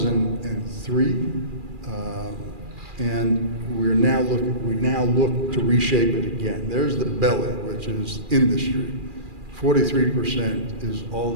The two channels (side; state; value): left; late; 2.4 ms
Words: and we now look to reshape it again. There's the belly, which is industry. 43% is all